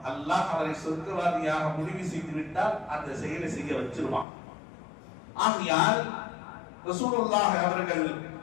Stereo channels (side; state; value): right; drops out; at 4.2 s